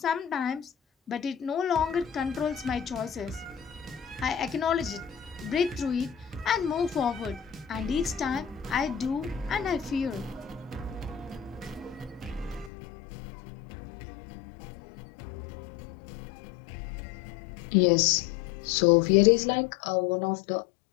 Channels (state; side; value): drops out; right; at 12.7 s